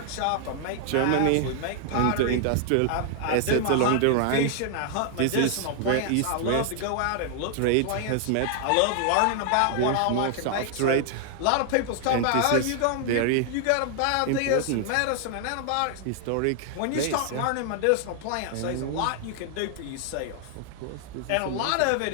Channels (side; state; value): both; different; correlation 0.00